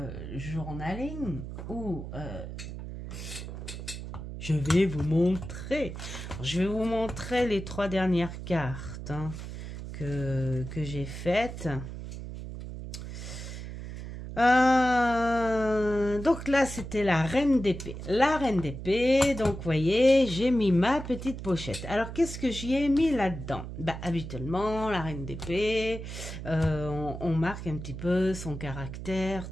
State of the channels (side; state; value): right; noise; hum, 9 dB below the sound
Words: journaling où je vais vous montrer. Je vais vous montrer les 3 dernières cartes que j'ai faites. Donc là, c'était la reine d'épée. La reine d'épée, donc vous voyez, j'ai mis ma petite pochette. Alors, qu'est-ce que j'y ai mis là-dedans? Habituellement, la reine d'épée, on marque un petit peu son caractère,